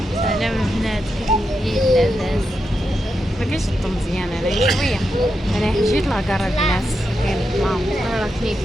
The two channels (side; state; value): both; normal; correlation 0.86